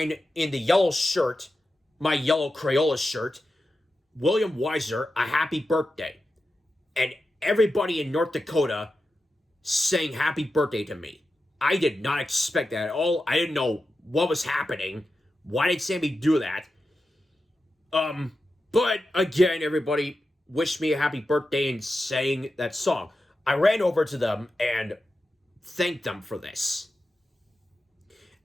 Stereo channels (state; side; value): normal; both; correlation 0.91